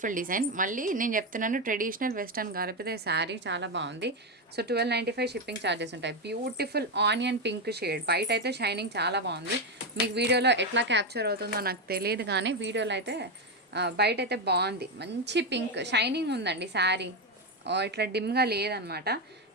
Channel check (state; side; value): normal; both; correlation 0.09